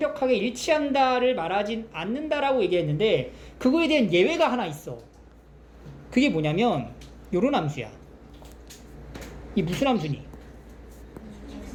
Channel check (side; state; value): both; identical; correlation 1.00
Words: 일치한다를 말하진 않는다라고 얘기했는데 그거에 대한 예외가 하나 있어. 그게 뭐냐면 요런 함수야. 이 무슨 함수니?